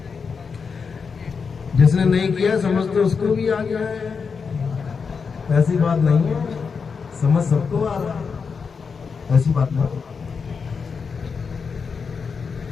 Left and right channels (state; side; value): quieter; right; 5.5 dB